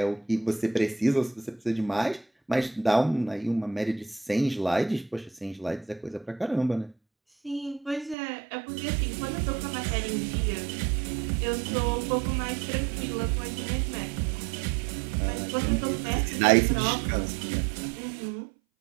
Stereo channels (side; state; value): left; drops out; at 8.2 s